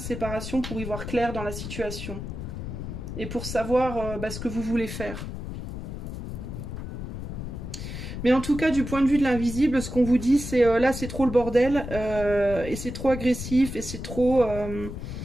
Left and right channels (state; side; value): noise; left; rumble, 7 dB below the sound